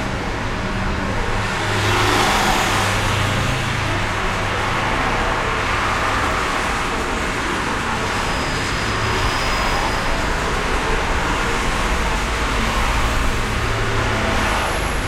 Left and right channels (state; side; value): identical; both; correlation 1.00